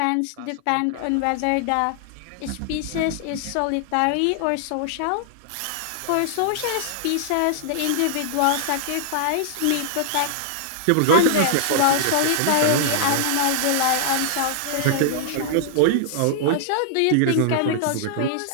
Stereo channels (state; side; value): different; both; correlation -0.01